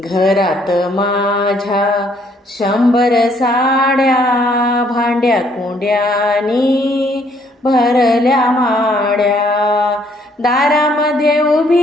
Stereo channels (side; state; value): both; normal; correlation 0.66